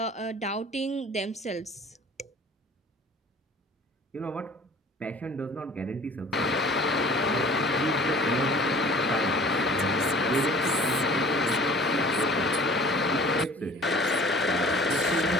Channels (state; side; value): normal; both; correlation 0.47